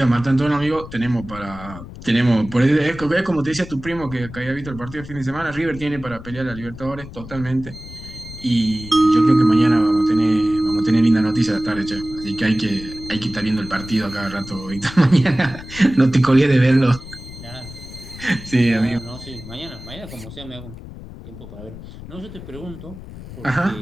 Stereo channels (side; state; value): left; noise; rumble, 14 dB below the sound